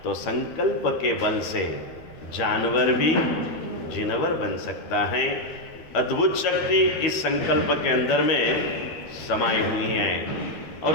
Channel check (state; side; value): late; right; 12 ms